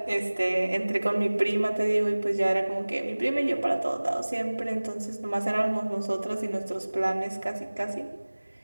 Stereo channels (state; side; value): inverted; both; correlation -1.00